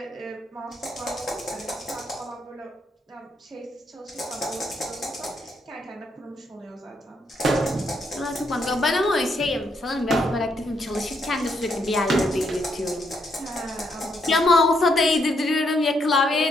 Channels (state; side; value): normal; both; correlation 0.75